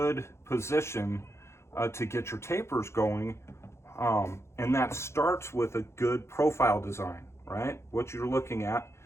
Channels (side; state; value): right; late; 0.13 ms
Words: position to get your tapers going. And that starts with a good profile design, right? What you're looking at